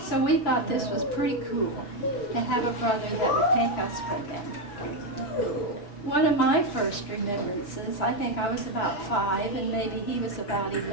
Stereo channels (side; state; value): right; late; 5.9 ms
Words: So we thought this was pretty cool to have a brother that would take us with him. One of my first remembrances, I think I was about 5, and maybe he was about 10